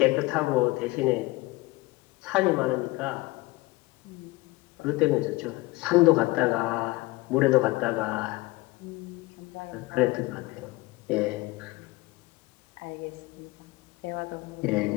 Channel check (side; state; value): right; quieter; 21.5 dB